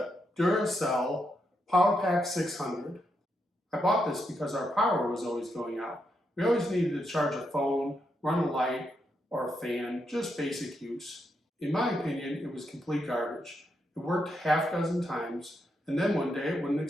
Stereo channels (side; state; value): both; normal; correlation 0.81